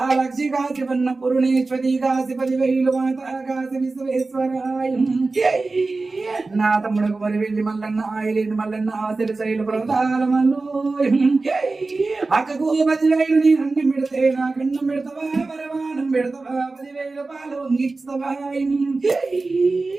కాశీ వన్న పురుణేశ్వరి కాశీ 10,000 మాతా కాశీ విశ్వేశ్వరాయ నా తమ్ముడు మరి వెళ్ళి మల్లన్న ఆయలేని మల్లన్న ఆశలు శైలు ప్రదాల మల్లు అక్కకు 10,000 నీ అన్నం పెడితే నా కన్నం పెడతావా పరమానం పెడతావా 10,000 పాలు వంగిస్తావా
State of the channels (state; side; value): quieter; left; 3.6 dB